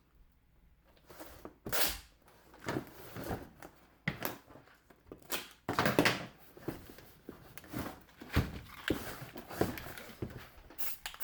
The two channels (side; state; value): both; identical; correlation 1.00